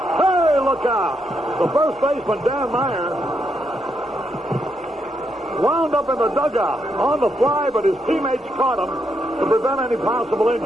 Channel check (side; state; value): both; normal; correlation 0.79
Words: look out. The first baseman, Dan Meyer, wound up in the dugout on the fly, but his teammates caught him to prevent any possible